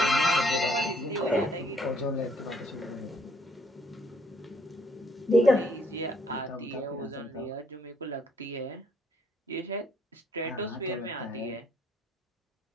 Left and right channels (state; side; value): normal; both; correlation 0.66